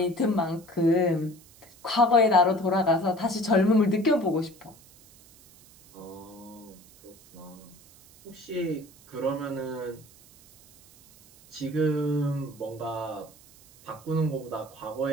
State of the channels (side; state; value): right; noise; hiss, 25 dB below the sound